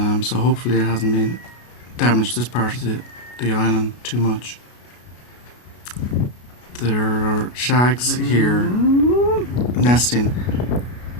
So hopefully it hasn't been damaged this part of the island too much. There are shags here nesting.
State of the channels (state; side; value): late; right; 33 ms